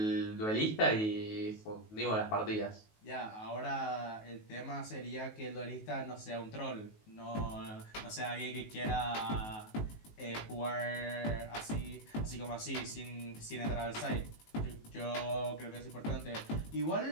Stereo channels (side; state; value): right; late; 19 ms